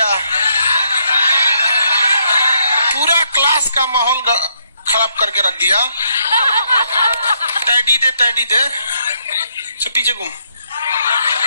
पूरा क्लास का माहौल खराब करके रख दिया। टैडी दे, टैडी दे, तो पीछे घूम,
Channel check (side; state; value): both; inverted; correlation -0.74